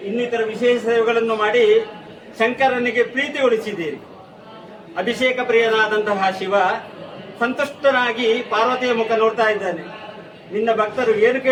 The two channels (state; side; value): identical; both; correlation 1.00